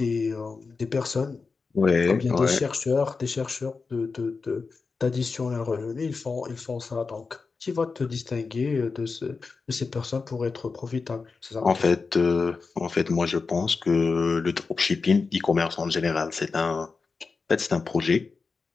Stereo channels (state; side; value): quieter; right; 4.6 dB